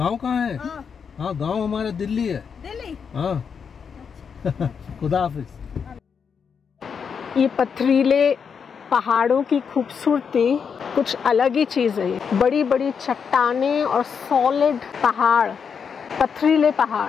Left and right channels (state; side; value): quieter; right; 6.5 dB